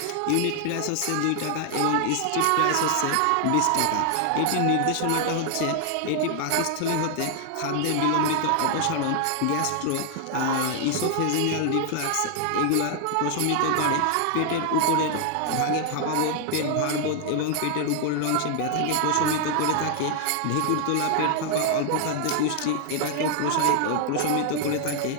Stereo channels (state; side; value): different; both; correlation 0.00